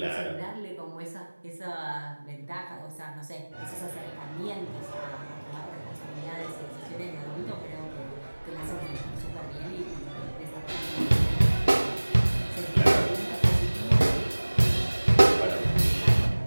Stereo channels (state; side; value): inverted; both; correlation -1.00